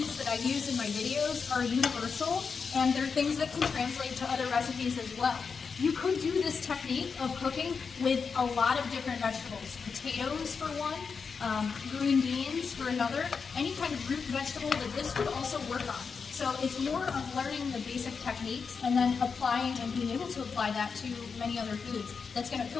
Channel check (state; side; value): quieter; right; 5.5 dB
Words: that I use in my videos are universal, and they're things that can translate to other recipes as well. You could do this technique of cooking with a lot of different vegetables. Potatoes for one, green beans for another, any kind of root vegetable that this would also work on. So it's more of learning the basic techniques and then applying and being able to apply that to many other foods. That's going to